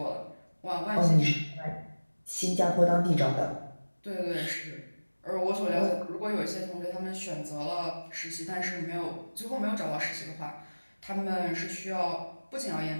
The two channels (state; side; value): inverted; both; correlation -1.00